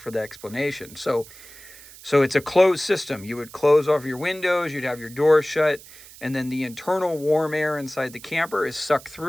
the explanation. So it's a closed system. You would close off your windows, you'd have your doors shut, and then the internal warm air inside the camper is sucked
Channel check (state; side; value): noise; right; hiss, 19 dB below the sound